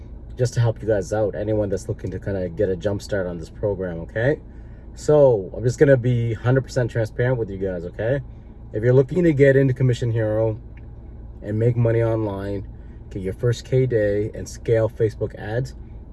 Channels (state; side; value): identical; both; correlation 1.00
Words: just to help you guys out. Anyone that's looking to kind of get a jump start on this program, okay? So I'm just going to be 100% transparent with you guys, okay? If you're looking to get into commission hero and make money online, get your first K day and scale Facebook ads,